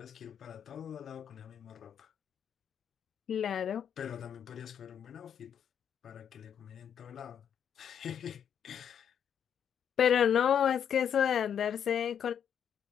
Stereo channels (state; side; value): quieter; right; 8.4 dB